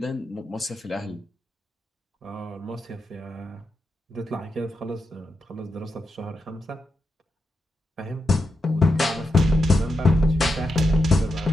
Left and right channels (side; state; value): both; normal; correlation 0.86